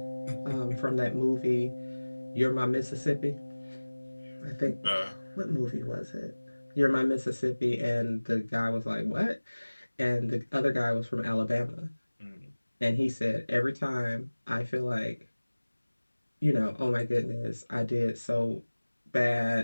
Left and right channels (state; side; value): inverted; both; correlation -1.00